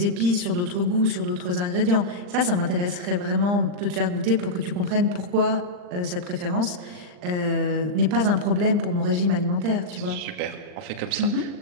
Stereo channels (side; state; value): left; late; 39 ms